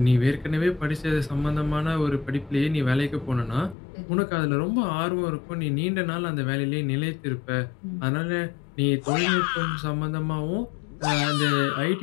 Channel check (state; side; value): drops out; right; at 3.8 s